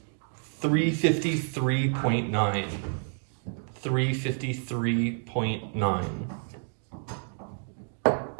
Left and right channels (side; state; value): left; silent; 55 dB below the other